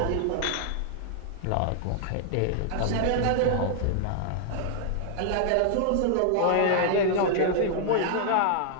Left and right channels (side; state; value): both; different; correlation 0.00